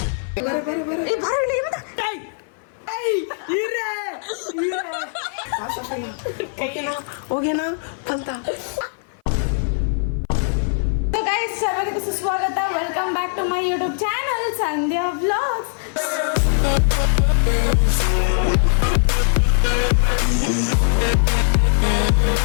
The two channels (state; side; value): silent; right; 57 dB below the other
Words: ಹೋಗೇನಾ ಅಂತ. ಸರ್ವರಿಗೂ ಸುಸ್ವಾಗತ. Welcome back to my YouTube channel Sandhya vlogs.